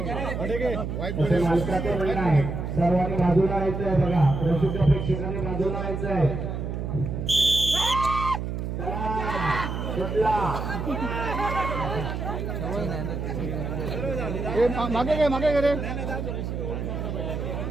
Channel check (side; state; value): right; noise; hum, 4 dB below the sound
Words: मालकाचं म्हणणं आहे सर्वांनी बाजूला यायचं आहे बघा रसिक प्रेक्षकांनी बाजूला यायचं आहे मागे गे रे